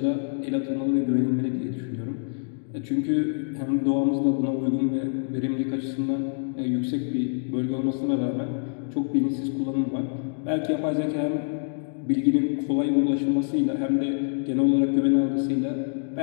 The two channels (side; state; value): right; silent; 61 dB below the other